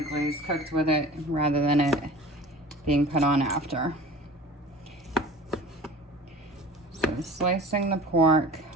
glaze cooked with it rather than it being put on after. So slicing the pork.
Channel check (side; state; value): both; normal; correlation 0.40